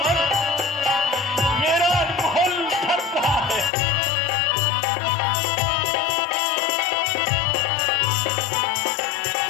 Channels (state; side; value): drops out; right; at 3.7 s